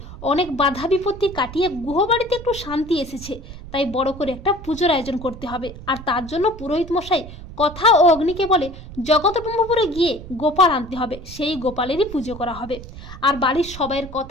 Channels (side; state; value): right; noise; rumble, 14 dB below the sound